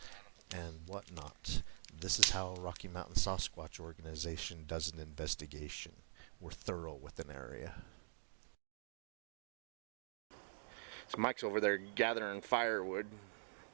and whatnot. This is how Rocky Mountain Sasquatch organization does an investigation. We're thorough with an area. So Mike's over there gathering firewood.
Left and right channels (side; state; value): left; silent; digital silence